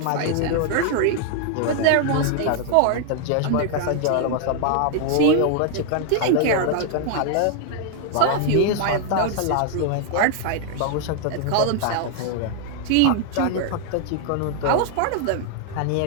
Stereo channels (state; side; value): different; both; correlation 0.00